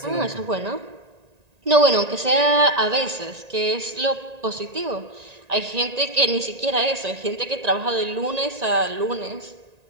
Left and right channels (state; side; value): late; left; 1.9 ms